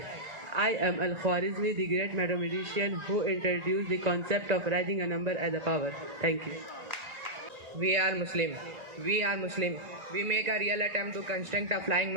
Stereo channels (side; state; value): left; late; 1.9 ms